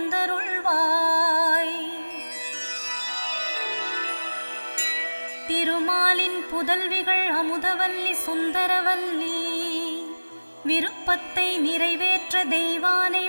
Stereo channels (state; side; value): inverted; both; correlation -1.00